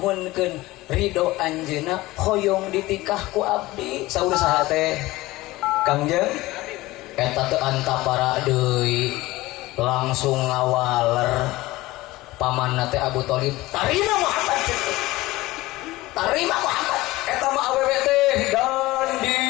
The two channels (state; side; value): quieter; right; 18.9 dB